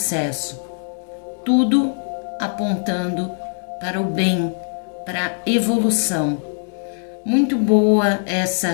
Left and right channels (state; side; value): silent; right; digital silence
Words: tudo apontando para o bem, para a evolução. Muito boa